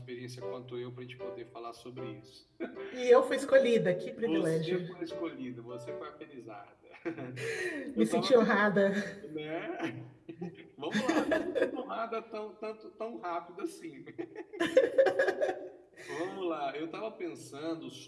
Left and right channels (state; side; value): identical; both; correlation 1.00